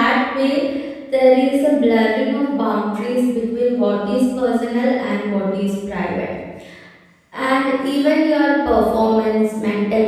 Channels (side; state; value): both; identical; correlation 1.00